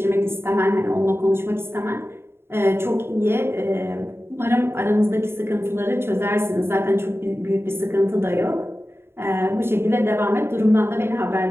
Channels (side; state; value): left; late; 0.12 ms